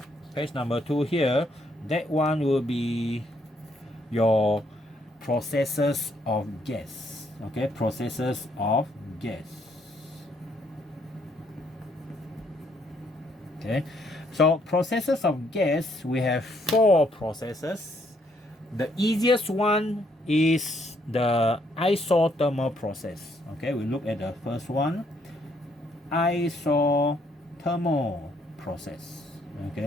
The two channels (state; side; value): normal; both; correlation 0.70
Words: page number 2 here. That one will be your processes of gas. Okay, processes of gas. Okay, so processes of gas, we have 4 processes. The easiest one is the isothermal process. Okay, we look at the first one, isothermal process.